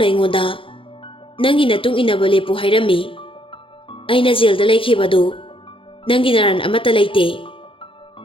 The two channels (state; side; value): late; right; 0.25 ms